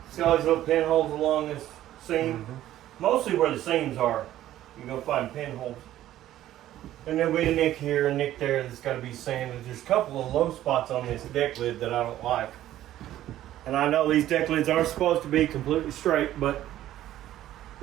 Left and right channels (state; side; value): quieter; left; 13.3 dB